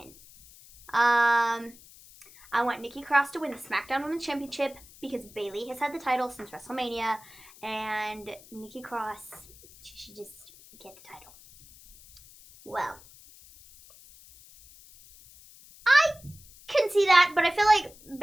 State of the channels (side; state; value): left; noise; hiss, 22 dB below the sound